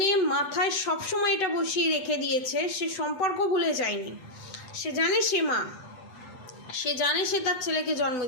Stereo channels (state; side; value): late; right; 8.1 ms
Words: মাথায় সবসময় এটা বসিয়ে রেখে দিয়েছে, সে সম্পর্ক ভুলে যায়নি। সে জানে সে মা, সে জানে সে তার ছেলেকে জন্ম